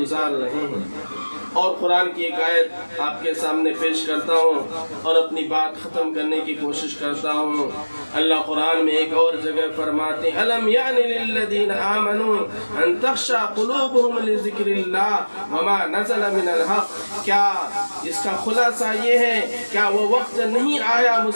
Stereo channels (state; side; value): inverted; both; correlation -1.00